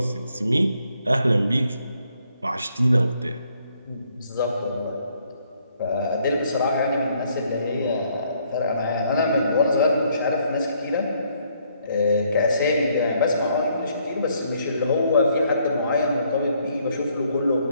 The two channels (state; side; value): inverted; both; correlation -0.70